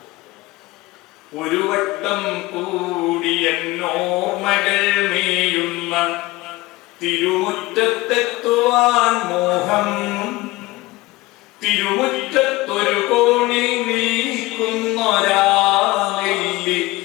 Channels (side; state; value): right; quieter; 20.1 dB